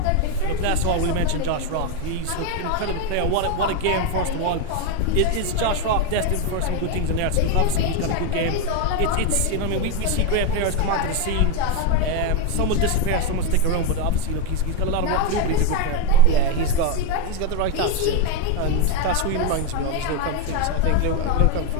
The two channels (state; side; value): different; both; correlation 0.02